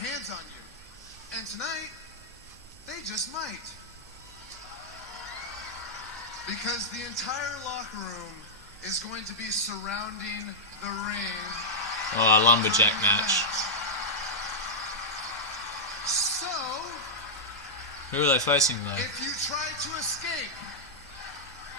on you. And tonight, they just might. Because the entire locker room is going to be surrounding the ring. Oh, a lumberjack match. So, who are they facing though? if you try to escape,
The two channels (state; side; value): noise; right; hum, 27 dB below the sound